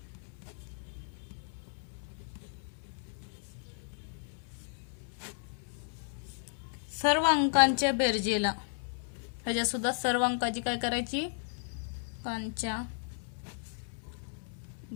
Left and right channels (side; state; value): right; silent; 55 dB below the other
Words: सर्व अंकांच्या बेरजेला, ह्याच्या सुद्धा सर्व अंकाची काय करायची, अंकांच्या